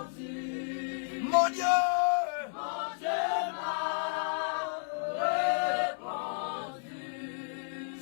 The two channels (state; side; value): silent; right; 56 dB below the other